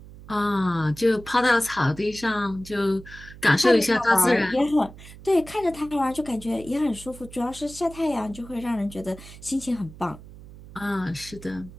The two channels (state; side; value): noise; right; hum, 18 dB below the sound